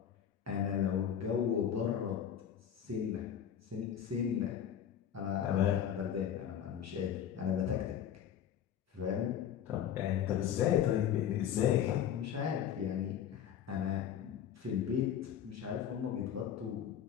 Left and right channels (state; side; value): quieter; right; 9.4 dB